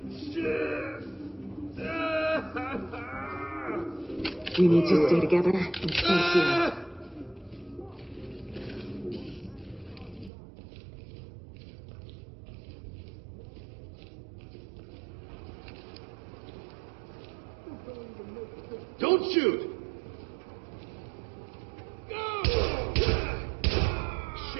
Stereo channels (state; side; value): drops out; left; at 10.3 s